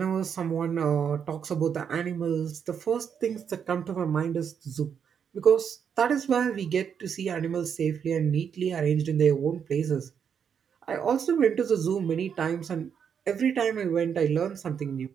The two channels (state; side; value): quieter; left; 7.4 dB